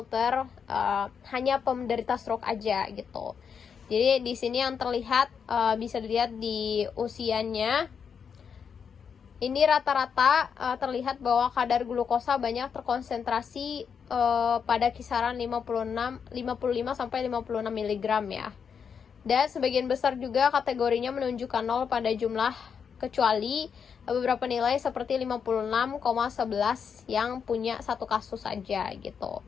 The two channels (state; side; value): quieter; right; 6.8 dB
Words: hanya penderita stroke aja gitu. Jadi di sini yang terlihat bisa dilihat di usianya. Ini rata-rata terlihat bahwa kadar glukosa banyak terkonsentrasi pada kisaran 55 sampai 56 mg ya. Dan sebagian besar juga kategorinya menunjukkan 0 pada jumlah, kecuali beberapa nilai seperti 56,11 yang punya satu kasus saja gitu.